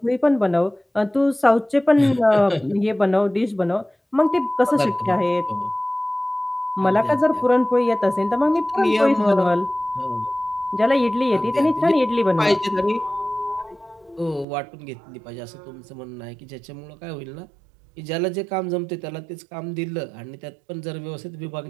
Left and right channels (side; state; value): left; drops out; at 14.5 s